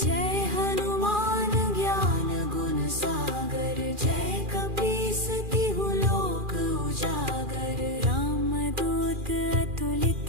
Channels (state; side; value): late; left; 2.4 ms